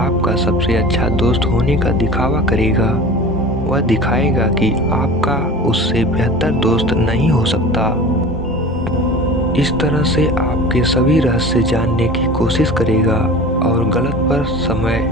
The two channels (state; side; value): normal; both; correlation 0.37